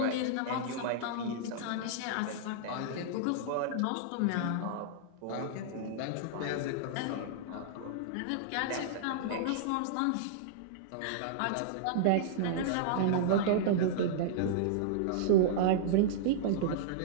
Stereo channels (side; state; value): both; different; correlation -0.02